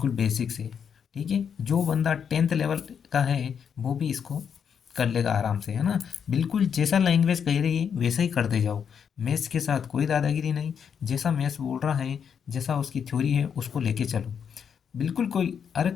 बेसिक से। ठीक है, जो बंदा 10th लेवल का है वो भी इसको कर लेगा आराम से, है ना। बिल्कुल जैसा लैंग्वेज कह रही है वैसा ही करते जाओ, मैथ्स के साथ कोई दादागिरी नहीं। जैसा मैथ्स बोल रहा है, जैसा उसकी थ्योरी है, उसको लेके चलो। बिल्कुल कोई, अरे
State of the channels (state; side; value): quieter; right; 7.4 dB